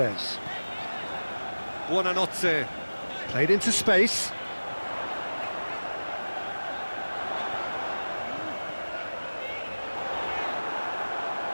Buonanotte. Played into space.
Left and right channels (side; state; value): both; inverted; correlation -1.00